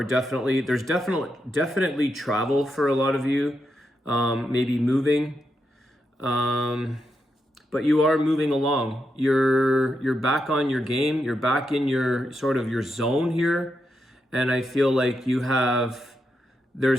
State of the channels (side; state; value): both; normal; correlation 0.84